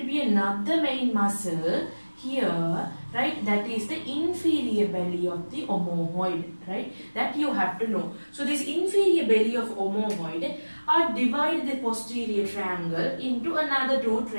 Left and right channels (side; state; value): both; inverted; correlation -1.00